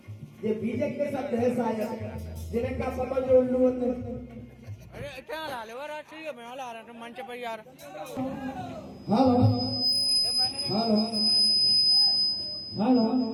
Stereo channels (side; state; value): both; identical; correlation 1.00